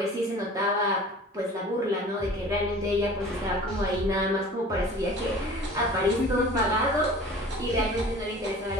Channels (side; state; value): both; normal; correlation 0.43